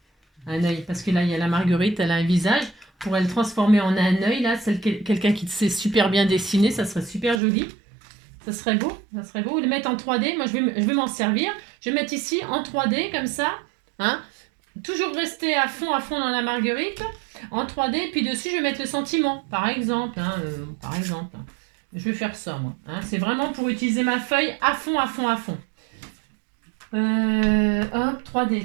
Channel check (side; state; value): left; drops out; at 7.4 s